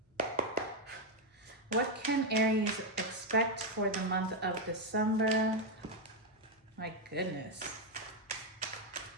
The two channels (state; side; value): normal; both; correlation 0.03